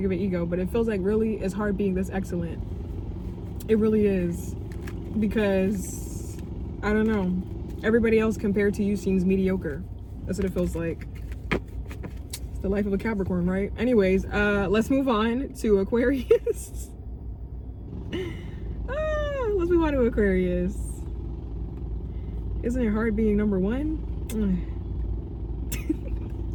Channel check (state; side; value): identical; both; correlation 1.00